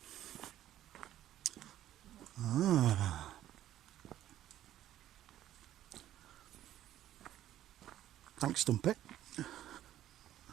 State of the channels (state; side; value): quieter; left; 12.6 dB